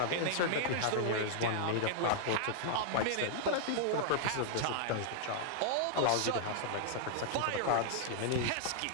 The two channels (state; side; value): different; both; correlation -0.01